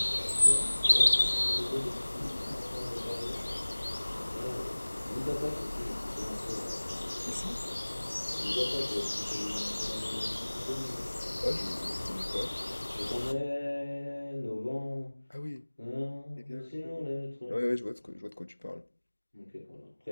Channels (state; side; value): inverted; both; correlation -1.00